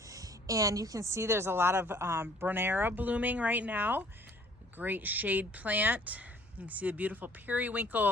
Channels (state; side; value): normal; both; correlation 0.56